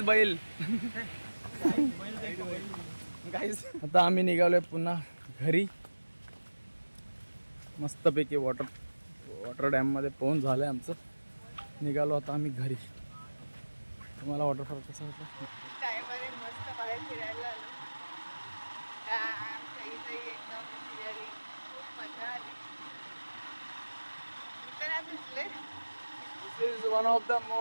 बैल. गाईज आता आम्ही निघालोय पुन्हा घरी. मस्तपैकी वॉटर डॅम मध्ये पोहून झालंय आमचं. निघालो आता आम्ही घरी. तुम्हाला वॉटरफॉल कसा होता. मस्त बाहेर फिरायला आलो. एकदम फिरायला खूप मजा आली. This is one of the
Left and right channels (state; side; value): inverted; both; correlation -1.00